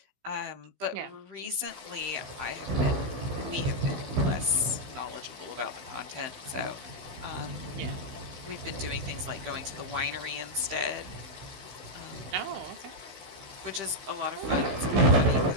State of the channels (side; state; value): left; late; 15 ms